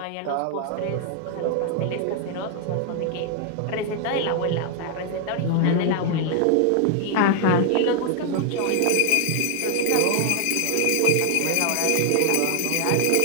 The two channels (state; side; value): different; both; correlation 0.00